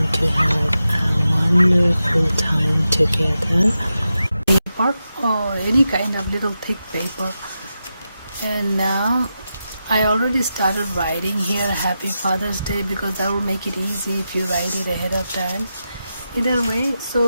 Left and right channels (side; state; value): both; inverted; correlation -0.89